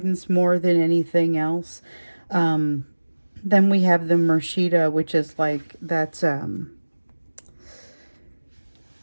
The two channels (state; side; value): inverted; both; correlation -1.00